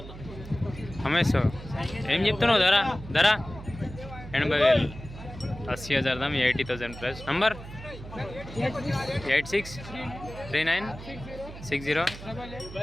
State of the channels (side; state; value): right; noise; hum, 13 dB below the sound